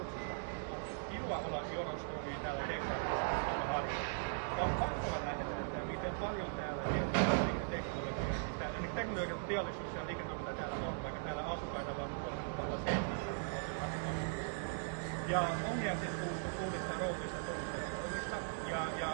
Kiva olla Jonos Oy täällä DCR. On pakko nähdä, että miten paljon täällä teknologian teollisuus ja liiketoiminta täällä on, vaikka täällä asukkaita vaan 3700. Ja on jäänyt uudesta roolista,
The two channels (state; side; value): silent; left; digital silence